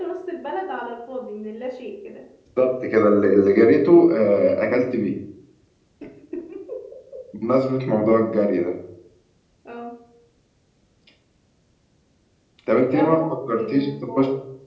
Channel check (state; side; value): identical; both; correlation 1.00